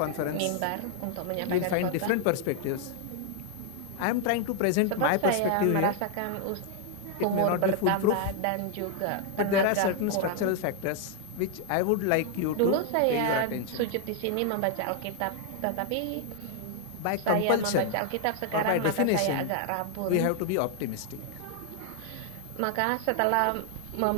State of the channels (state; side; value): different; both; correlation 0.00